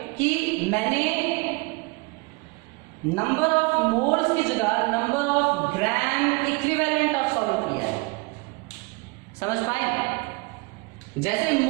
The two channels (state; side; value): quieter; left; 27.3 dB